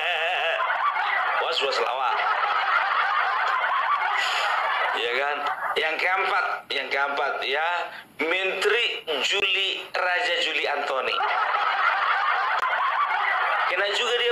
Was-was lawak. Ya kan? Yang keempat ya, Menteri Raja Juli Antoni. Kena juga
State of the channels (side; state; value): both; identical; correlation 1.00